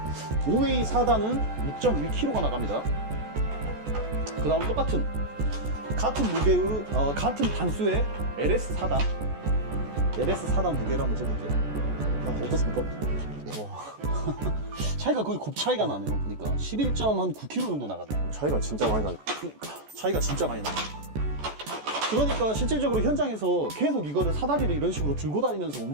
5웨이 4단은 6.1kg가 나갑니다. 그 다음 똑같은 같은 무게의 같은 단수의 LS 4단 무게를 한번 재볼게요. 자, 어떻습니까? 차이가 거의 곱 차이가 나네요. 그러니까 11.9kg 정도 나가네요. 차이가 진짜 많이 나요. 그러니까 차이가 진짜 많이 나요. 그러니까 실질적으로 현장에서 계속 이거를 사다리를 이런 식으로 들고 다니면서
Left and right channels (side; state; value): left; late; 14 ms